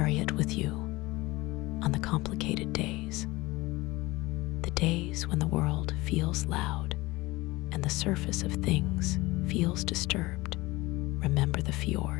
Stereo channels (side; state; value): right; quieter; 20.8 dB